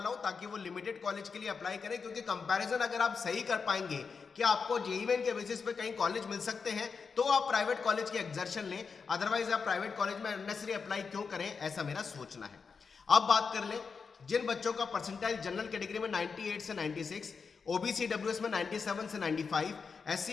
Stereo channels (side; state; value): right; quieter; 5.4 dB